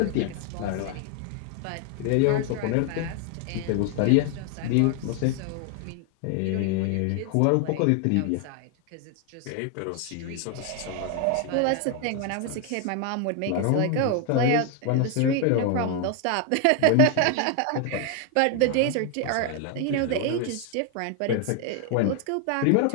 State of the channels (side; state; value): both; different; correlation 0.01